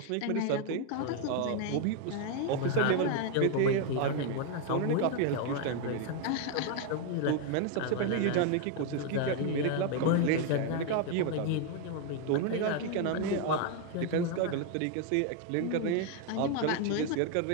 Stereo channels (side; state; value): both; different; correlation 0.01